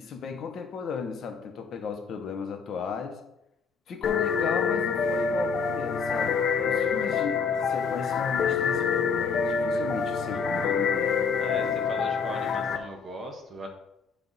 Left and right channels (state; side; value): quieter; right; 5.6 dB